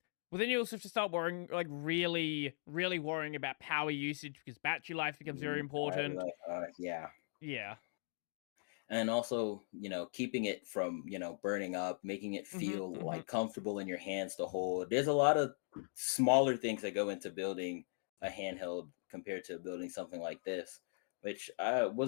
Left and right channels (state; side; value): silent; right; digital silence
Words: Well, then you also have to start worrying, like really, really worrying about power usage because battery life becomes very important. Yeah. Yeah. And also, keeping it from, burning up, making it Hmm. feel Hmm. like comfortable in your hands to hold. There's a lot of smaller things that go into building a handheld compared to building something like this, which